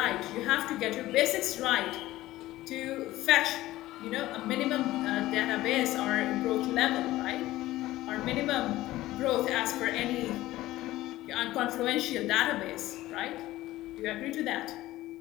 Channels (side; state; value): right; quieter; 16.4 dB